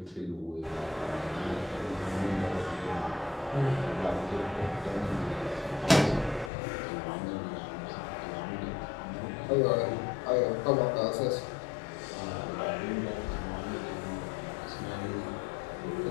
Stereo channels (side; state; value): right; drops out; at 6.5 s